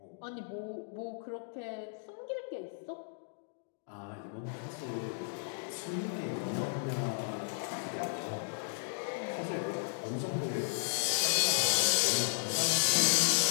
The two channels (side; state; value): right; silent; digital silence